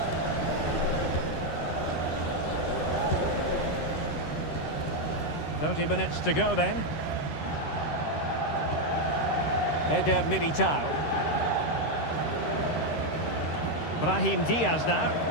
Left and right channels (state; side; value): late; right; 13 ms